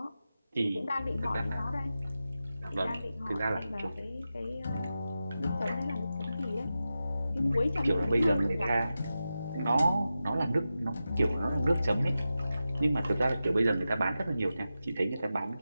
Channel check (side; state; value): both; inverted; correlation -0.92